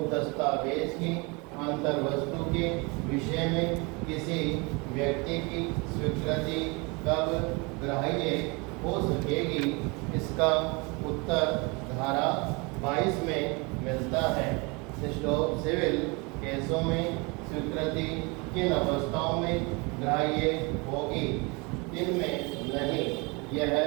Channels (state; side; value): quieter; left; 28.5 dB